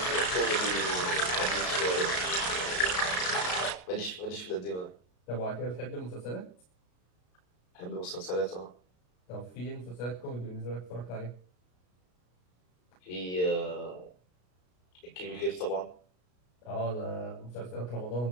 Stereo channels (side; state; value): right; late; 33 ms